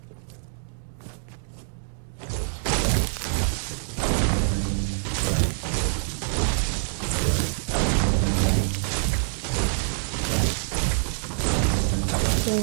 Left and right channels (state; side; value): silent; left; digital silence